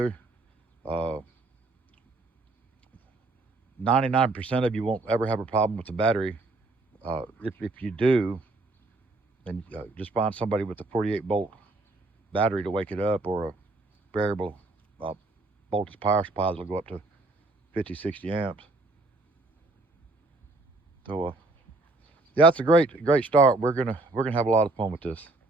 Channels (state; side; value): quieter; left; 3.1 dB